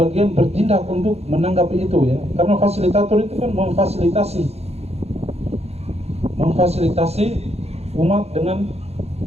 bagian bertindak untuk menanggapi itu ya. Karena fasilitator itu kan memfasilitasi umat dengan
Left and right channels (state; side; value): late; left; 0.30 ms